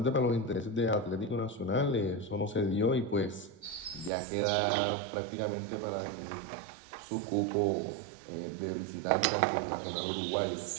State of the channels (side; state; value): left; drops out; at 4.1 s